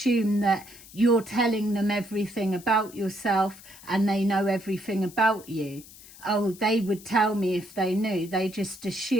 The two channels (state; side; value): noise; left; hiss, 20 dB below the sound